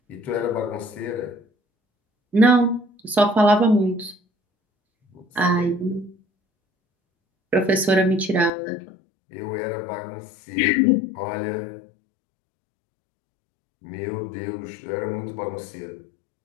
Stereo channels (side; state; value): right; drops out; at 8.5 s